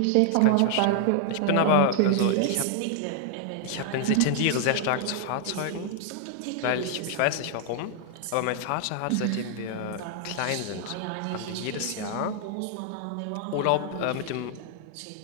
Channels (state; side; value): different; both; correlation 0.00